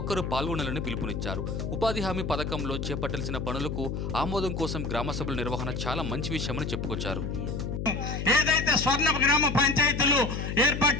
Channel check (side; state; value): left; noise; hum, 4 dB below the sound